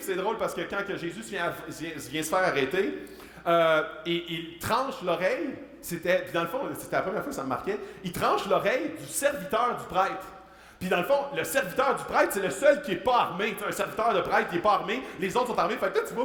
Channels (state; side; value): identical; both; correlation 1.00